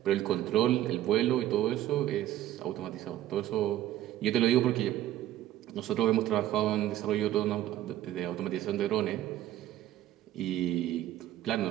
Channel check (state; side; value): quieter; left; 13.2 dB